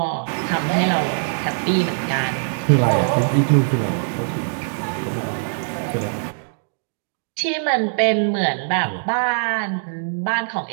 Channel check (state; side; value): silent; left; digital silence